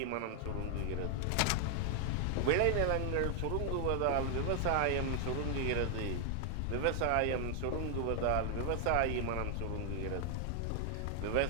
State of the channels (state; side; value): different; both; correlation 0.00